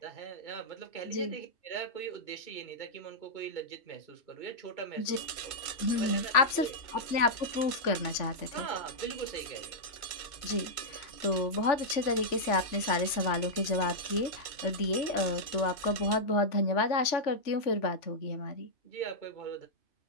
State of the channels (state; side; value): late; right; 3.4 ms